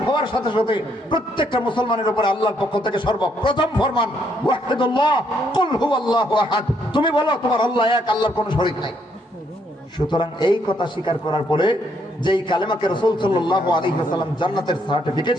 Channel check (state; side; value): normal; both; correlation 0.72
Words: হওয়ার সাথে সাথে প্রত্যেকটা মুসলমানের উপরে আল্লাহর পক্ষ থেকে সর্বপ্রথম ফরমান ওয়াহিদুল্লাহ, কুল হুয়াল্লাহু আহাদ, তুমি বলো তোমার আল্লাহ এক, আল্লাহর কোনো শরীক নাই। সুতরাং এই কথা স্বীকার করার পরে যেই কালেমাকে রাসূল সাল্লাল্লাহু আলাইহি ওয়াসাল্লাম জান্নাতের সার্টিফিকেট